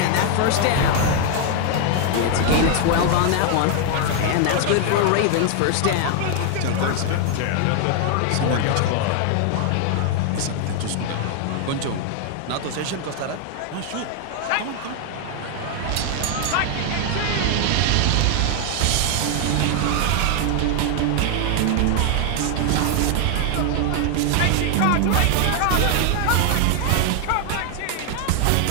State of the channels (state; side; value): different; both; correlation 0.00